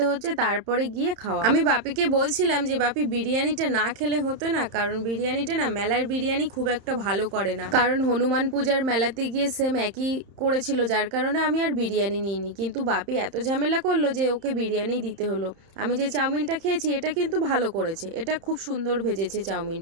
হচ্ছে, তারপরে গিয়ে খাওয়া। আমি বাপিকে বলছিলাম যে বাপি বিরিয়ানিটা না খেলে হতো না, কারণ বিরিয়ানিটা না, মেলার বিরিয়ানি খুব একটা ভালো করে না, কারণ হনুমান পূজার মেলাতে গিয়ে সেম একই করেছিল, যার কারণে আমি আর বিরিয়ানি নিইনি। কিন্তু বাপি এত ঝামেলা করলো যে ওকে বিরিয়ানি দিতে হলো। আমি যে চাউমিনটা খেয়েছি এটা কিন্তু ভালো করেছে, এটা খুব সুন্দর ভেজেছে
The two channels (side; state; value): left; late; 31 ms